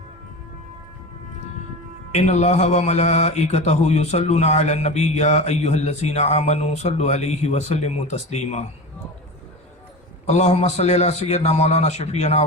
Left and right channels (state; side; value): normal; both; correlation 0.28